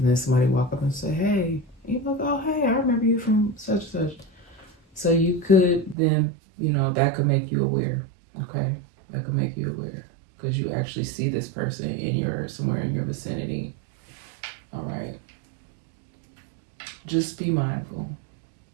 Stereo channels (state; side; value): drops out; left; at 6.0 s